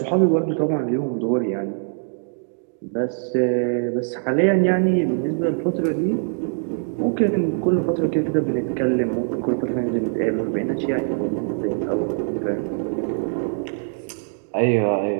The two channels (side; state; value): left; silent; digital silence